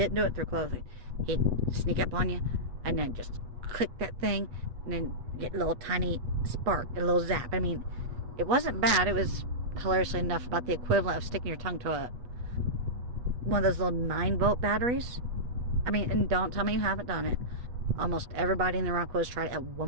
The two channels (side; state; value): left; late; 8.2 ms